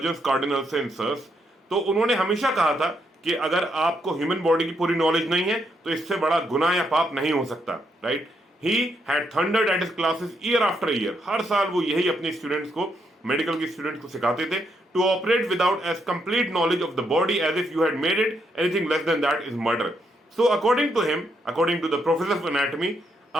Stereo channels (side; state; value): both; normal; correlation 0.77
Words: cardinal sensors. तो उन्होंने हमेशा कहा था कि अगर आपको ह्यूमन बॉडी की पूरी नॉलेज नहीं है तो इससे बड़ा गुनाह या पाप नहीं हो सकता. Right. He had thundered at his classes year after year. हर साल वो यही अपने स्टूडेंट्स को, मेडिकल के स्टूडेंट्स को सिखाते थे. To operate without as complete knowledge of the body as if you had made it anything less than that is murder. So according to him, according to the professor of anatomy,